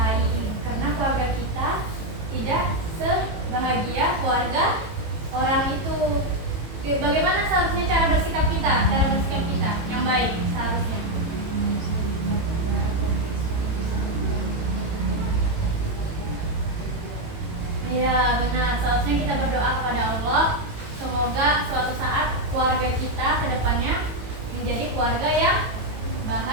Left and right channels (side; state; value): left; late; 18 ms